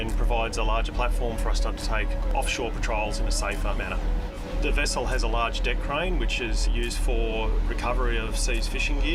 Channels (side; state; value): both; identical; correlation 1.00